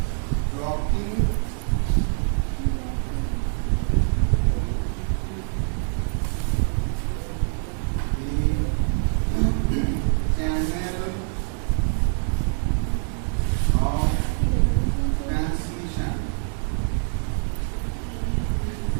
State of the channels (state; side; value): silent; left; 58 dB below the other